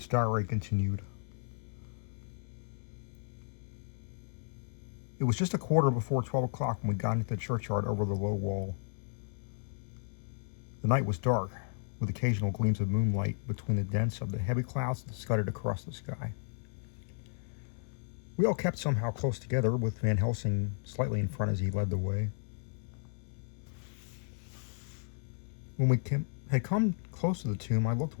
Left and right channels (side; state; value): right; silent; digital silence